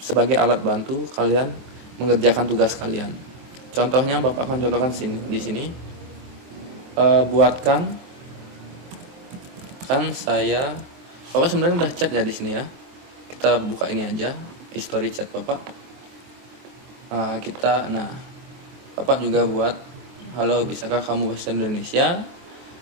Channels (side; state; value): left; late; 23 ms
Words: alat bantu kalian mengerjakan tugas kalian. Contohnya Bapak akan contohkan di sini. Buatkan, kan saya, Bapak sebenarnya udah chat ya di sini ya. Kita buka ini aja, history chat Bapak. Bapak juga buat, halo, bisakah kamu bahasa Indonesia?